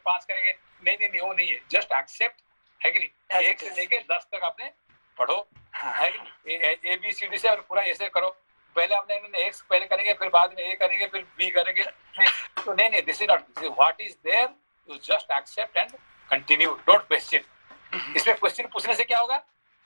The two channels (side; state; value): both; inverted; correlation -1.00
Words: 5 करेंगे। नहीं, वो नहीं है, जस्ट एक्सेप्ट, है कि नहीं? 1 से लेके 10 तक आपने पढ़ो, है कि नहीं? ABCD से और पूरा ऐसे करो। पहले आपने X पहले करेंगे, फिर बाद में A करेंगे, फिर B करेंगे। तो नहीं, this is not, what is there, you just accept and continue, don't question. इसमें क्वेश्चन पूछने से क्या होगा,